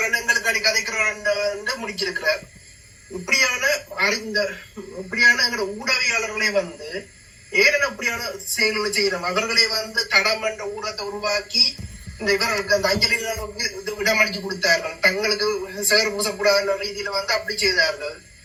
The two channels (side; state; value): both; identical; correlation 1.00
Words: எங்களுக்கு அடி கதைக்கிறார் முடிச்சிருக்கிறார். இப்படியான எங்களோட ஊடகவியாளர்களே வந்து ஏன் அப்படியான செயல்களை செய்யறோம். அவர்களே வந்து தடம் என்ற ஊடகத்தை உருவாக்கி இந்த இவர்களுக்கு அந்த அஞ்சலி இடமளிச்சு கொடுத்தார்கள். தங்களுக்கு சேர் பூசக்கூடாத ரீதியில வந்து அப்படி செய்தார்கள்,